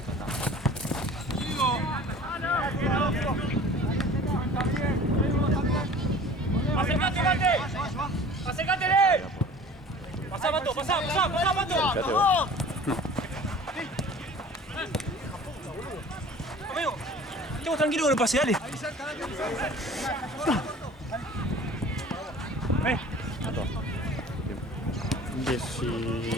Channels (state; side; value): normal; both; correlation 0.45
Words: ¡Acércate, Mate! ¡Acércatele! ¡Pasá, Mato! ¡Pasá, pasá, pasá, Mato! ¡Vamos! Amigo, estemos tranquilos con el pase, dale. Ven.